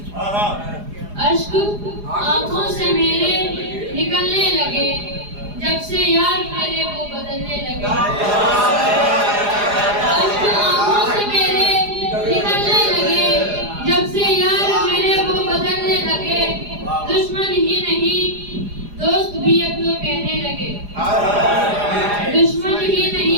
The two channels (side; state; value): left; late; 4.9 ms